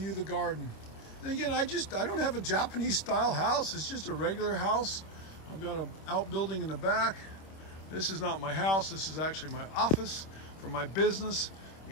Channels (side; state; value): right; late; 26 ms